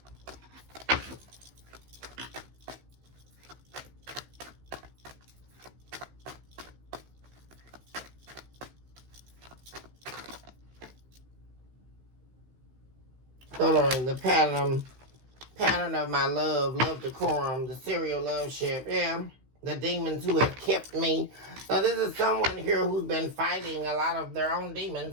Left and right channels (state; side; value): late; left; 16 ms